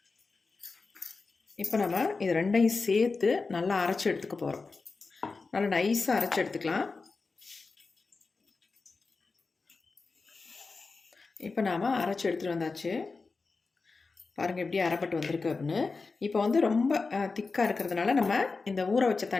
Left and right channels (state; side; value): quieter; right; 4.2 dB